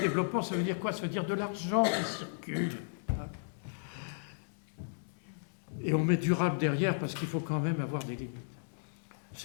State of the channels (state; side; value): silent; right; digital silence